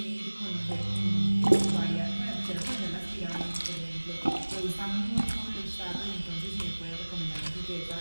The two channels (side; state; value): both; inverted; correlation -1.00